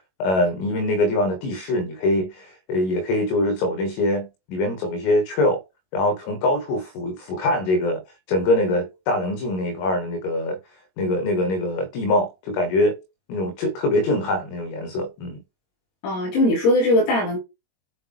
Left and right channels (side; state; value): right; late; 22 ms